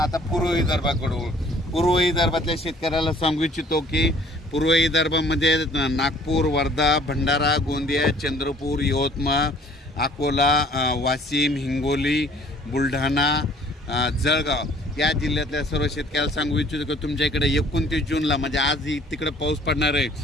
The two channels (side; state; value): both; normal; correlation 0.56